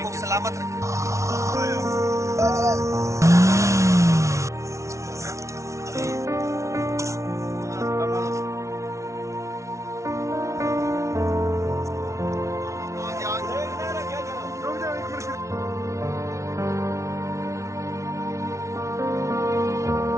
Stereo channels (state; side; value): late; left; 0.14 ms